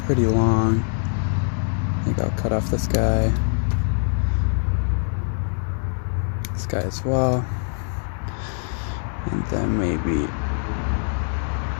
pretty long. I think I'll cut off this guy as well, and then maybe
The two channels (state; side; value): silent; right; digital silence